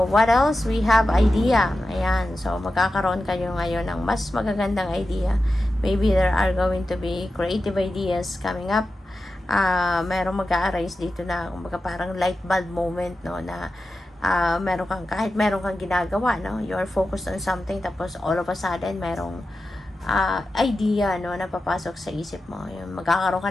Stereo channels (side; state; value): both; normal; correlation 0.92